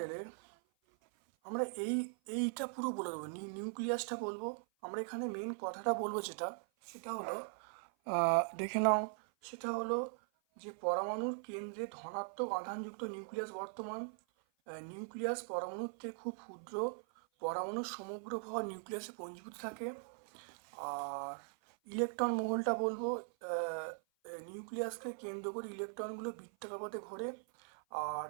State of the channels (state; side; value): silent; left; 51 dB below the other